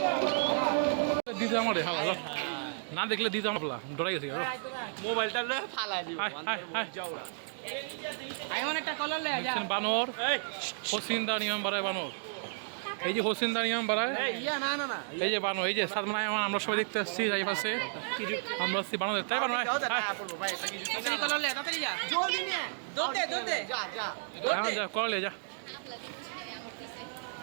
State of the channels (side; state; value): left; silent; digital silence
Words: দিতে আমার হালা না দেখলে দিতে আমার ডরাই গেছে। মোবাইলটা ফালাই দিব বানর হোসিন্দা নিয়ম বাড়ায়, বানর এই যে হোসিন্দা নিয়ম বাড়ায়, এই যে বানর, এই যে সাদমানায় আমরা সবাই দেখতে আসছি এই পাশে, আমরা আসছি বানর তাই বানর যা করলে যা